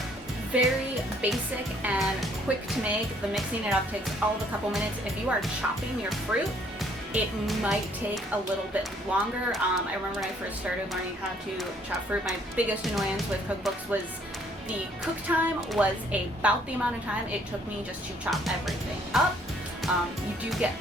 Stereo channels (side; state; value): both; normal; correlation 0.63